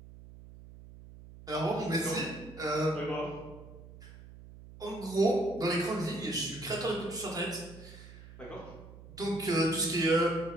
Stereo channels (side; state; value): right; noise; hum, 17 dB below the sound